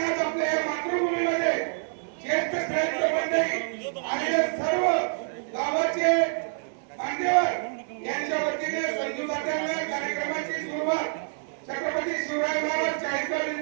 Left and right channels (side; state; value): left; silent; digital silence